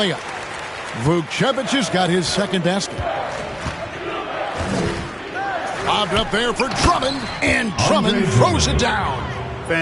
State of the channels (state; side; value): identical; both; correlation 1.00